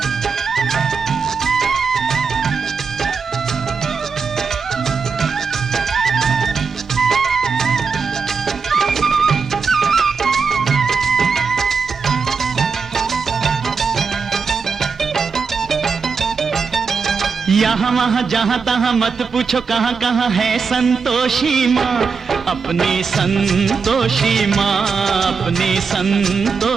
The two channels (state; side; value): quieter; left; 5.3 dB